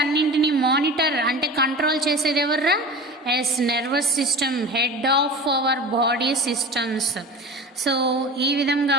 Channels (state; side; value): normal; both; correlation 0.34